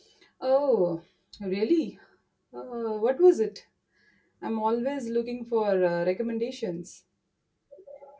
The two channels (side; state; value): both; identical; correlation 1.00